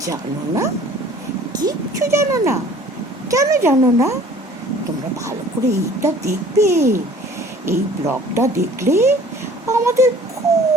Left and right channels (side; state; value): both; normal; correlation 0.50